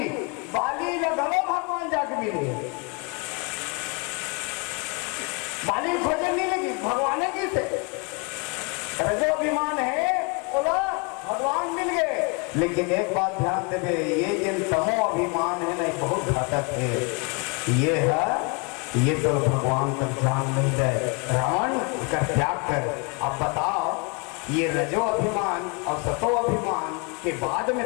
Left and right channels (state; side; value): quieter; right; 31.8 dB